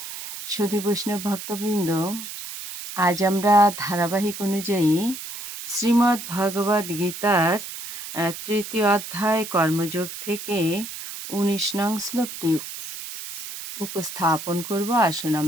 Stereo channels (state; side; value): noise; right; hiss, 9 dB below the sound